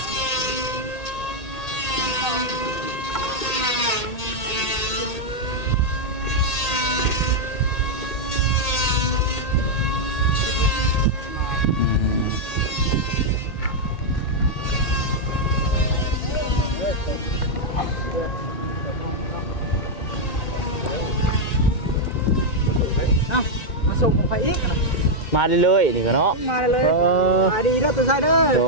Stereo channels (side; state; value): right; late; 1.8 ms